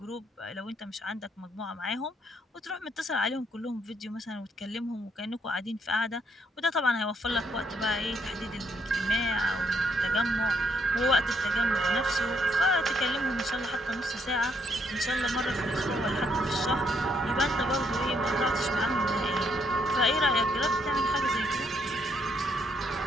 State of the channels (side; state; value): both; normal; correlation 0.72